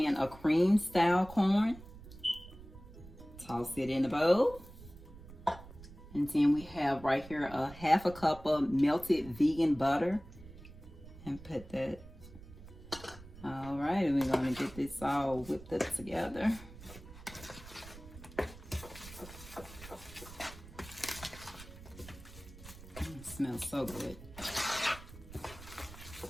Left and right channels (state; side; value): noise; right; rumble, 17 dB below the sound